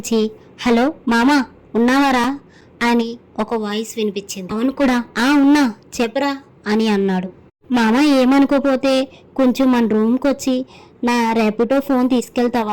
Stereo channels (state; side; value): identical; both; correlation 1.00